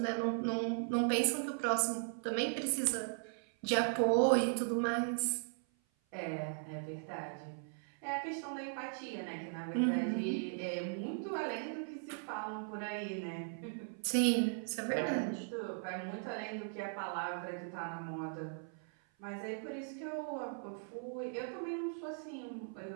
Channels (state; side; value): silent; left; 52 dB below the other